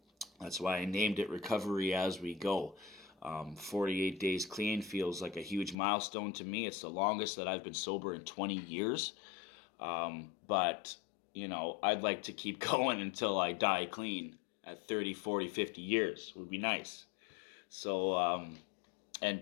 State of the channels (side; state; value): right; drops out; at 5.8 s